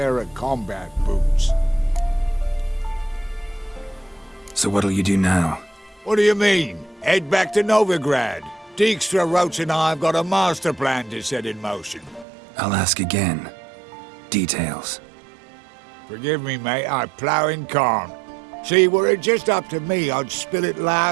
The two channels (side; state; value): left; drops out; at 12.2 s